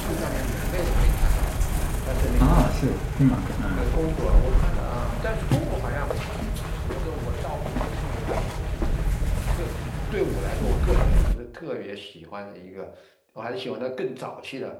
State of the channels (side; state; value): both; identical; correlation 1.00